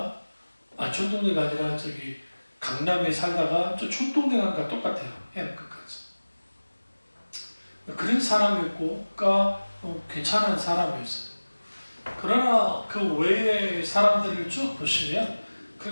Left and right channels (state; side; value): inverted; both; correlation -1.00